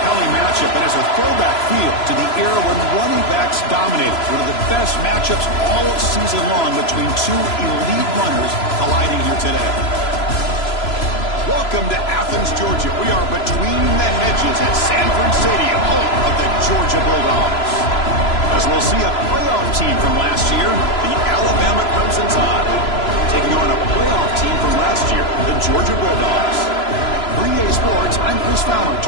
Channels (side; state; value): right; late; 3.0 ms